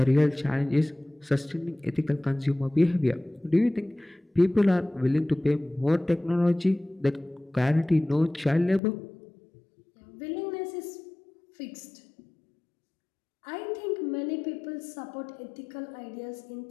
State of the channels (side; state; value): right; drops out; at 8.8 s